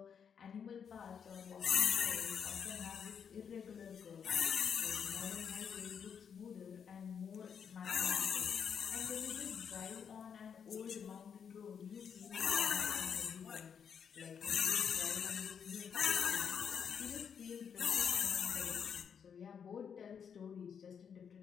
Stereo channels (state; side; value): quieter; right; 7.3 dB